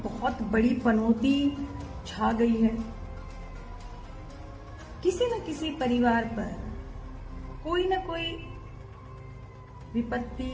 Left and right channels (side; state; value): both; identical; correlation 1.00